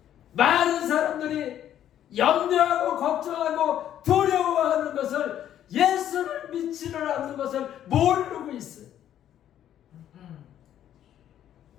많은 사람들이 염려하고 걱정하고 두려워하는 것을 예수를 믿지를 않는 것을 모르고 있어요.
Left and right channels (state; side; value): quieter; right; 10.9 dB